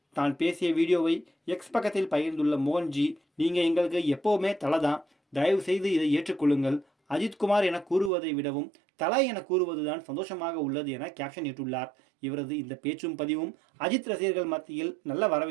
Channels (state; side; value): drops out; left; at 8.1 s